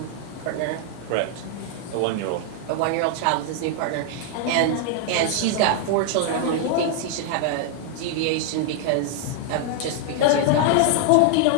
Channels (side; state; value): both; different; correlation 0.00